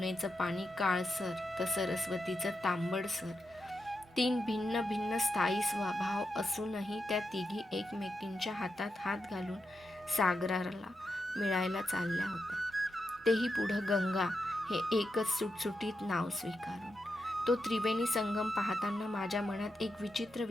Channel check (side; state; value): both; normal; correlation 0.86